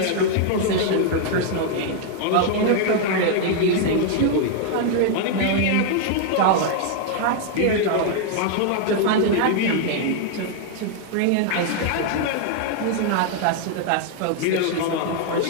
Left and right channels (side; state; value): both; different; correlation 0.00